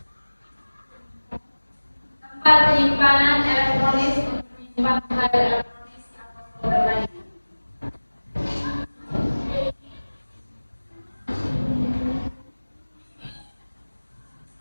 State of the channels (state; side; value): inverted; both; correlation -1.00